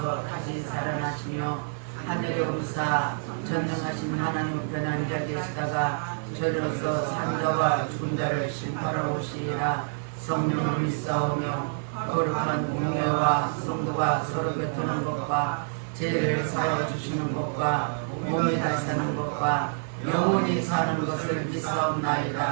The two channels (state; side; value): silent; left; digital silence